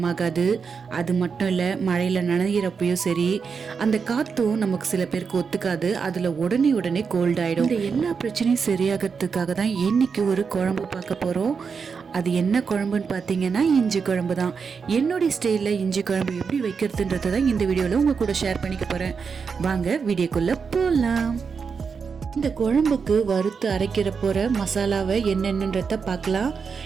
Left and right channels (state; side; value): quieter; left; 5.7 dB